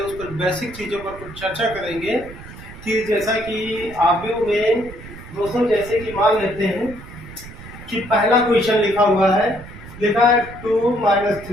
उस पर बेसिक चीज़ों पर कुछ चर्चा करेंगे कि जैसा कि आव्यूह में दोस्तों जैसे कि मान लेते हैं कि पहला क्वेश्चन लिखा हुआ है, लिखा है 2 -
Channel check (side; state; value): right; noise; rumble, 15 dB below the sound